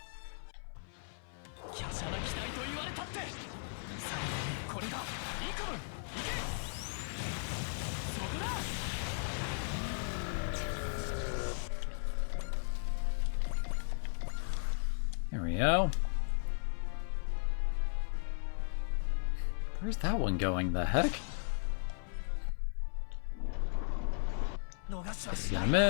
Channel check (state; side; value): silent; right; 53 dB below the other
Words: There we go. Where's that one going? The heck? He's gonna